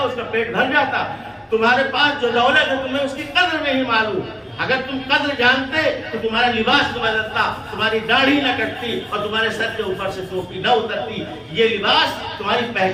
کا پیٹ بھر جاتا۔ تمہارے پاس جو دولت ہے تمہیں اس کی قدر نہیں معلوم۔ اگر تم قدر جانتے تو تمہارا لباس نہ بدلتا، تمہاری داڑھی نہ کٹتی اور تمہارے سر کے اوپر سے ٹوپی نہ اترتی۔ یہ لباس تمہاری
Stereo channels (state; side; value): identical; both; correlation 1.00